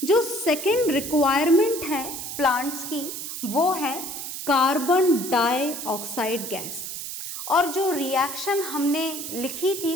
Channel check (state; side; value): noise; right; hiss, 7 dB below the sound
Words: जो सेकेंड रिक्वायरमेंट है प्लांट्स की वो है कार्बन डाइऑक्साइड गैस। और जो रिएक्शन हमने लिखी थी